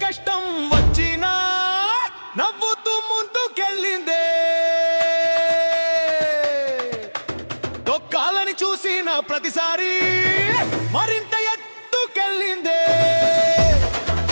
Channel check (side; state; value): both; inverted; correlation -1.00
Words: కష్టం వచ్చినా నవ్వుతూ ముందుకెళ్ళిందే. తొక్కాలని చూసిన ప్రతిసారి మరింత ఎత్తుకెళ్ళిందే.